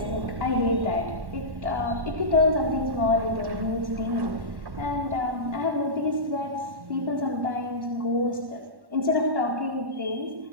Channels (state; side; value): late; left; 1.1 ms